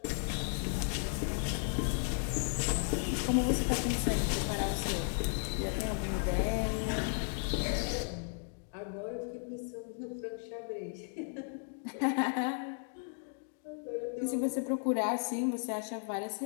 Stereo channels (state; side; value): silent; right; 55 dB below the other